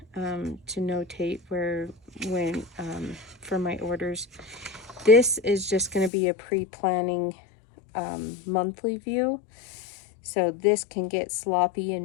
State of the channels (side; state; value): right; drops out; at 6.1 s